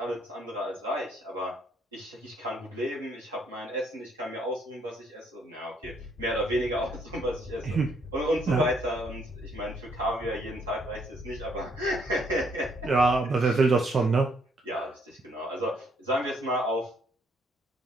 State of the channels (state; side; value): normal; both; correlation 0.69